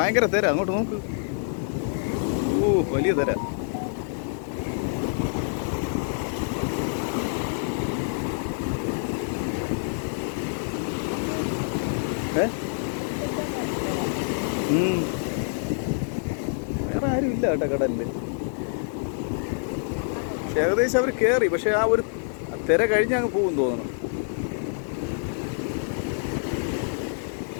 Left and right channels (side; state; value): right; silent; digital silence